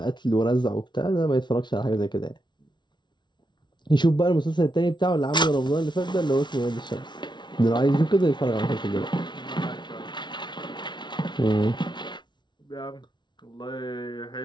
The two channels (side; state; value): right; late; 0.22 ms